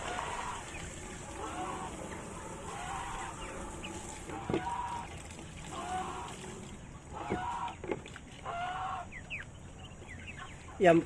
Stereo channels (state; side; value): identical; both; correlation 1.00